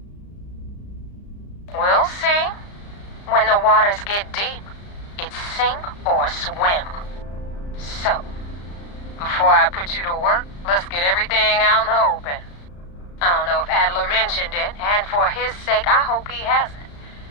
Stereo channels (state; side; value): late; right; 35 ms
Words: We'll see. When the waters get deep, it's sink or swim. So, before I put you to work, let's get everything out in the open. I don't know if Adler mentioned it, and for his sake, I hope he hasn't.